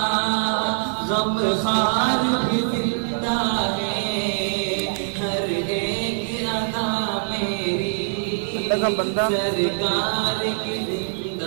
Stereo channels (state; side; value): silent; left; digital silence